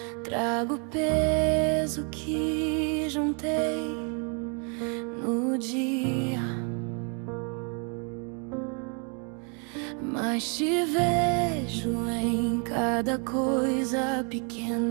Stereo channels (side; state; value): left; quieter; 38.0 dB